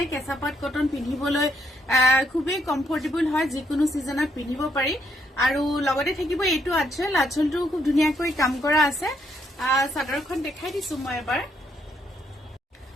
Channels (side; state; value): both; normal; correlation 0.74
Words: কেঁচাপাত কটন পিন্ধিবলৈ খুবেই কমফৰ্টেবল হয় যিকোনো সিজনত পিন্ধিব পাৰি আৰু লগতে থাকিব এইটো আঁচলটো খুব ধুনীয়াকৈ কাম কৰা আছে চাদৰখন দেখাই দিছো মই এবাৰ